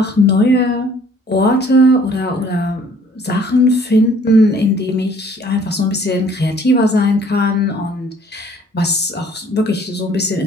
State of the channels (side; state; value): both; normal; correlation 0.57